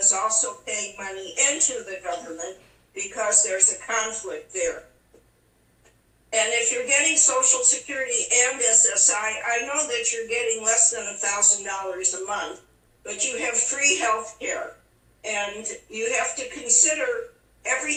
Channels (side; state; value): both; identical; correlation 1.00